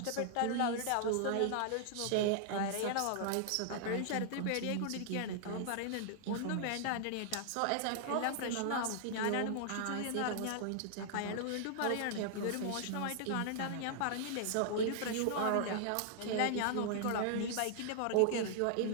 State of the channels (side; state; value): both; different; correlation -0.01